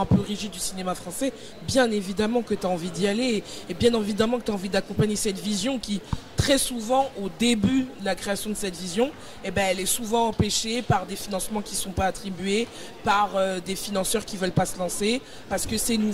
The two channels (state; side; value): identical; both; correlation 1.00